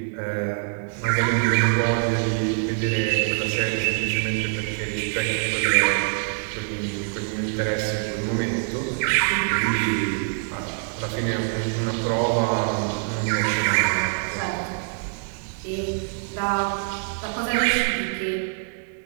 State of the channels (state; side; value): silent; left; 62 dB below the other